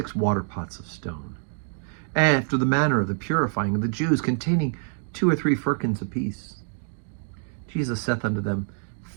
water pots of stone, after the manner of the purifying of the Jews, containing 2 or 3 firkins apiece. Jesus saith unto them,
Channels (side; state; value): left; silent; 61 dB below the other